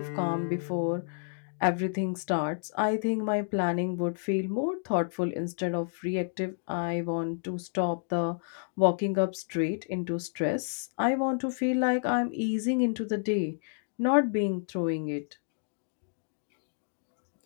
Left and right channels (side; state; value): right; silent; digital silence